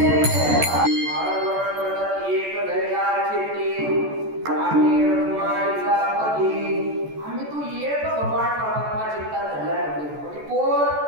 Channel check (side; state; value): left; late; 14 ms